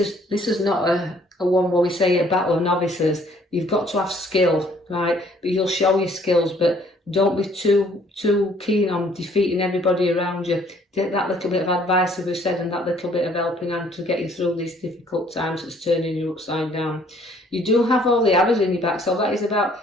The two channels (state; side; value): normal; both; correlation 0.61